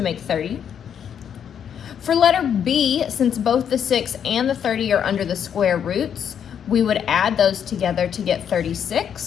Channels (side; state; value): right; quieter; 8.4 dB